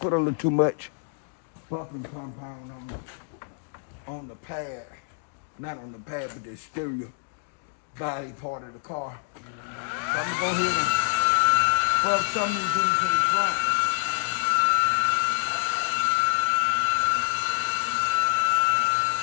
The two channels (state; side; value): silent; right; digital silence